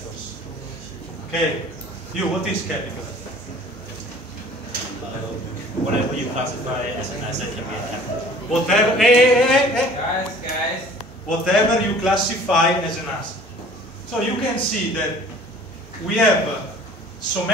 Okay. You, what is capital? Whatever you classify as an asset can be a capital. Whatever, Guys. whatever you classify as an asset. So you can see that we have so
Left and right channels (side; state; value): both; normal; correlation 0.49